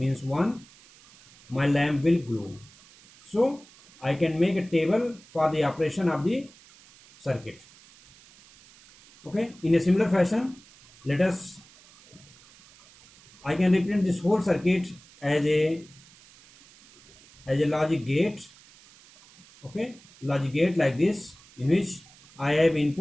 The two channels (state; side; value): noise; right; hiss, 25 dB below the sound